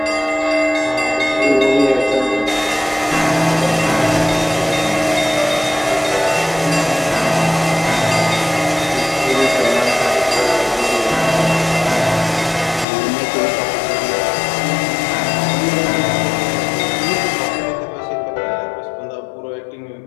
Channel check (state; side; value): drops out; right; at 12.9 s